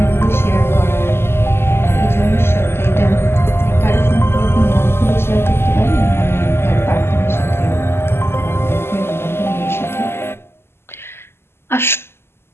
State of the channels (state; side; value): late; right; 0.12 ms